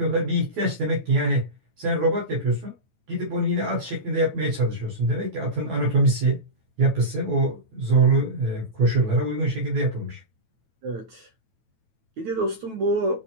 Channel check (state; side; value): late; left; 9.1 ms